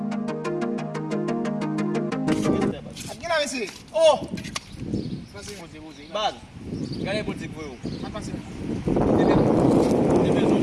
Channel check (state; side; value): identical; both; correlation 1.00